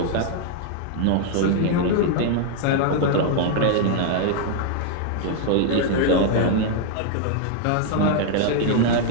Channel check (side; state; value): both; different; correlation 0.00